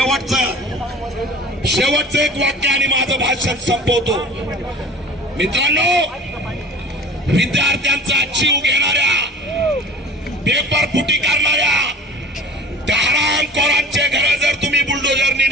शेवटचं एक वाक्य आणि माझं भाषण संपवतो. मित्रांनो, विद्यार्थ्यांचा जीव घेणाऱ्या, पेपर फुटी करणाऱ्या त्या हरामखोरांचे घर जर तुम्ही बुलडोजरनी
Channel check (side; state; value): both; normal; correlation 0.43